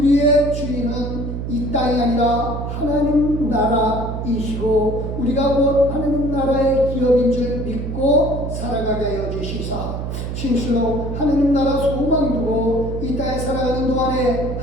주인은 이 땅이 아니라 하나님 나라이시고 우리가 곧 하나님 나라의 기업인 줄 믿고 살아가게 하여 주시사 진실로 하나님 나라 소망 두고 이 땅에 살아가는 동안에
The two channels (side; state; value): right; noise; hum, 4 dB below the sound